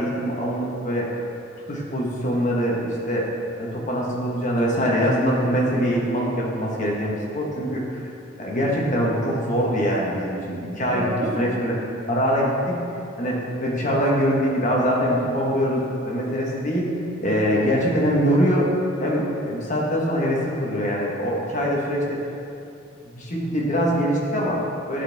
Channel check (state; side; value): normal; both; correlation 0.45